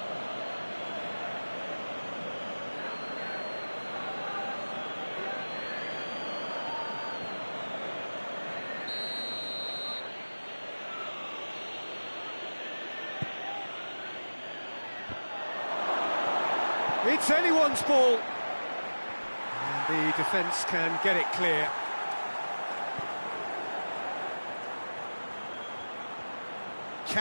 It's anyone's ball. And the defence can get it clear.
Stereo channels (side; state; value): both; inverted; correlation -1.00